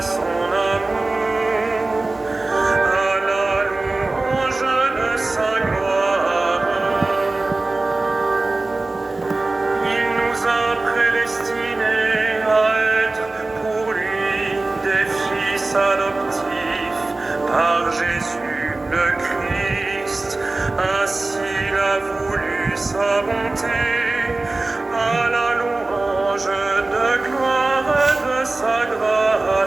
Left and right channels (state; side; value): quieter; left; 3.2 dB